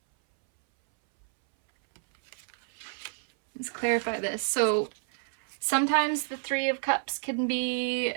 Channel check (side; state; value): left; silent; 59 dB below the other